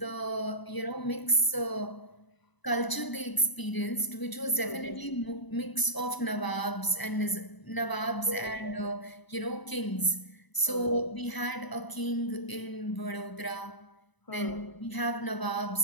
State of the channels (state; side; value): late; right; 1.0 ms